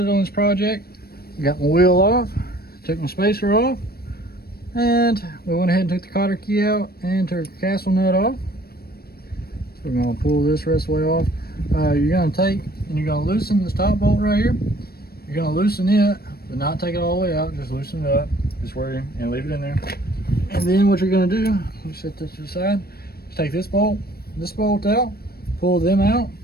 on this project. Got my wheel off, took my spacer off, and we went ahead and took the cotter key out and took the castle nut off. We're going to pull this rest of the way off. You're going to take and you're going to loosen this top bolt right here. You're going to loosen it, but not take it all the way out. Just loosen it up, just where you, and leave it in there. And then what you're going to do, let me set this to the side, is take this bolt out, pull them out,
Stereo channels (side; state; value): right; late; 0.45 ms